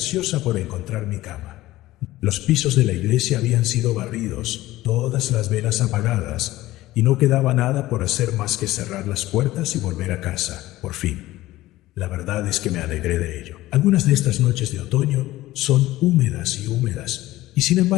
por encontrar mi cama. Los pisos de la iglesia habían sido barridos, todas las velas apagadas, y no quedaba nada por hacer más que cerrar las puertas y volver a casa, por fin. La verdad es que me alegré de ello. Algunas de estas noches de otoño son húmedas y húmedas, y sin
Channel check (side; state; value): right; quieter; 16.7 dB